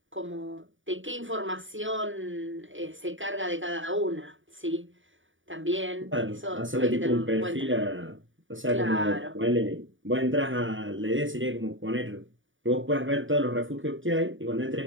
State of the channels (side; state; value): left; late; 0.57 ms